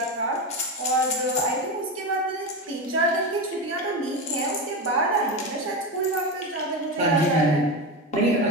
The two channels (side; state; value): both; normal; correlation 0.18